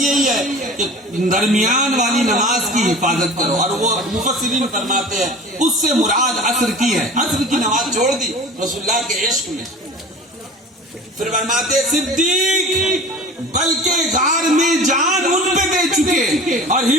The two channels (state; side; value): normal; both; correlation 0.39